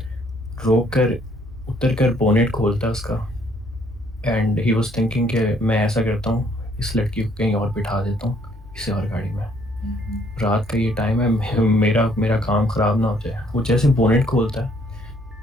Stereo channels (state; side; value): normal; both; correlation 0.65